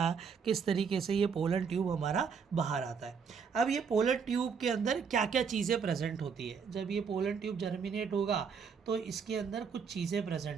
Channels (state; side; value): quieter; left; 6.2 dB